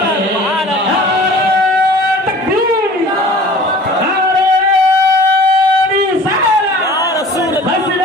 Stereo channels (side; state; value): both; normal; correlation 0.45